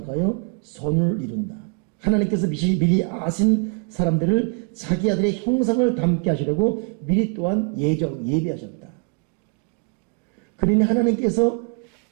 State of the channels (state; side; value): quieter; left; 36.6 dB